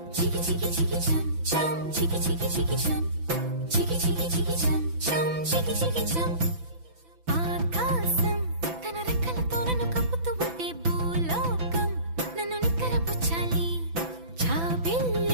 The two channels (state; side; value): late; left; 6.0 ms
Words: chicky chicky chicky chum, chum, chicky chicky chicky chum, chicky chicky chicky chum, chum, chicky chicky chum.